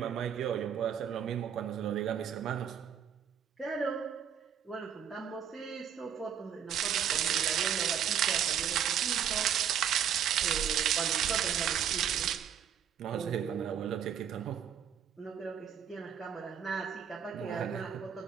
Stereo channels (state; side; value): quieter; left; 8.8 dB